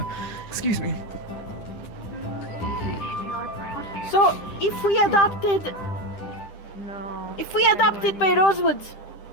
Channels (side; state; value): right; late; 10 ms